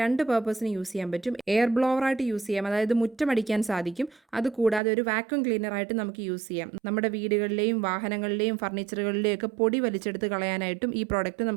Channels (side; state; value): left; drops out; at 4.8 s